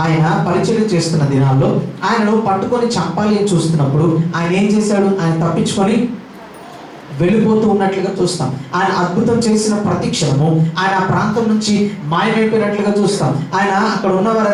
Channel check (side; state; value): both; identical; correlation 1.00